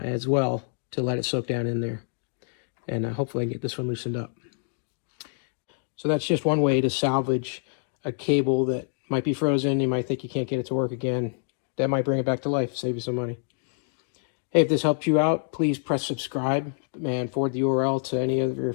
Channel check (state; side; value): silent; right; digital silence